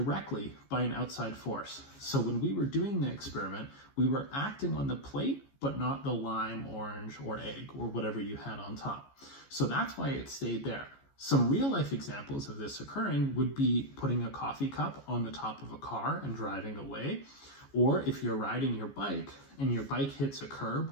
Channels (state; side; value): late; right; 14 ms